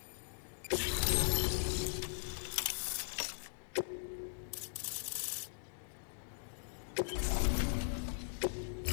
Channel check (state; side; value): silent; right; digital silence